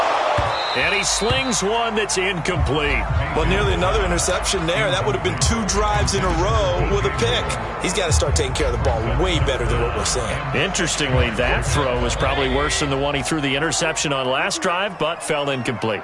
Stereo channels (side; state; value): both; identical; correlation 1.00